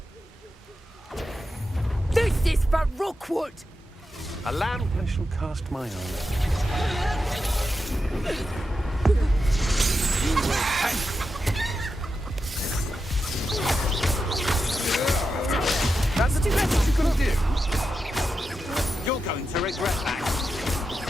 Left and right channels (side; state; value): both; normal; correlation 0.88